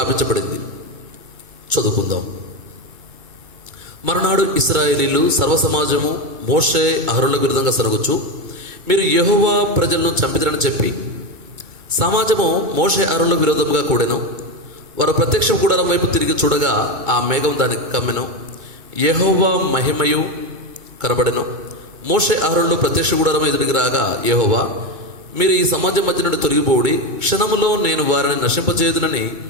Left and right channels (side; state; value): left; late; 2.2 ms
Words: చదువుకుందాం. మరునాడు ఇశ్రాయేలీలు సర్వసమాజము మోషే అహరోనులకు విరుద్ధంగా సరుగుచు, మీరు యెహోవా ప్రజలను చంపిదరని చెప్పి సమాజము మోషే అహరోనులకు విరోధంగా కూడెను. వారు ప్రత్యక్ష గుడారం వైపు తిరిగి చూడగా ఆ మేఘం దానికి కమ్మెను. యెహోవా మహిమయు కనబడెను. మోషే అహరోనులు ప్రత్యక్ష గుడారం ఎదురికి రాగా యెహోవా, మీరు ఈ సమాజం మధ్య నుండి తొలగిపోడి క్షణములో నేను వారిని నశింపచేయుదునని